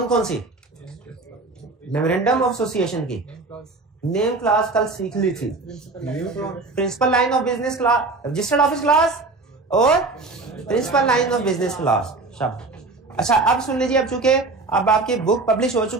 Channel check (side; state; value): left; quieter; 3.6 dB